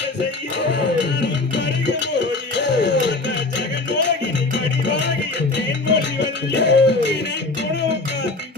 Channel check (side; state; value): right; quieter; 3.3 dB